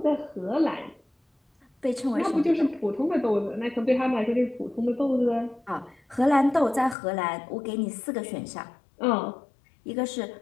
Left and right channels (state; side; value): drops out; right; at 7.0 s